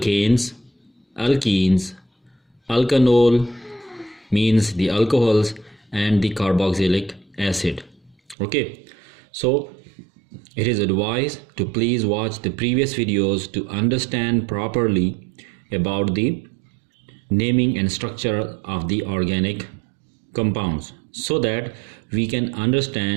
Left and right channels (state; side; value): drops out; left; at 8.3 s